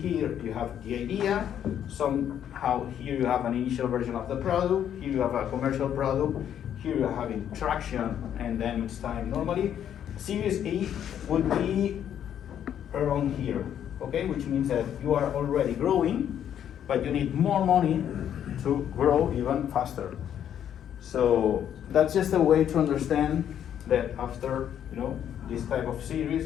you have the idea, somehow here you have an initial version of the product, here you have a commercial product, here you're having traction, and then it's time. Normally, Series A would be around here, okay? Which means that you are already growing, but you need more money to grow even faster. So that's just a way to understand that after this type of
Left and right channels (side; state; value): right; quieter; 9.7 dB